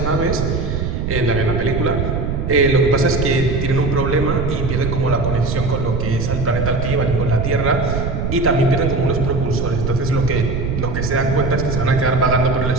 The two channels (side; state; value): right; noise; rumble, 2 dB below the sound